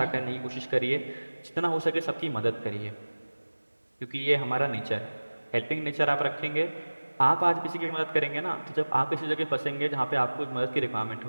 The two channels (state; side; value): inverted; both; correlation -1.00